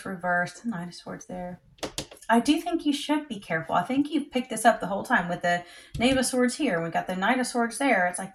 reversed. Nine of Swords there. I do think you should be careful. I think you've picked this up the whole time with the Knave of Swords here. We got the Knight of Swords there. It's like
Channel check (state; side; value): identical; both; correlation 1.00